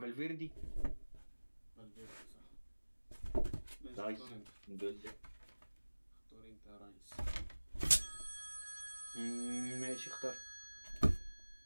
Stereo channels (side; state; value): both; inverted; correlation -1.00